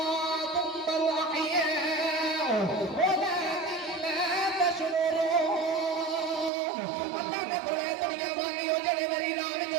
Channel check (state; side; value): drops out; left; at 6.5 s